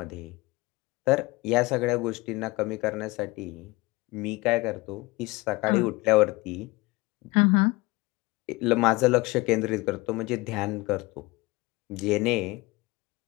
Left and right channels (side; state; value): right; quieter; 22.5 dB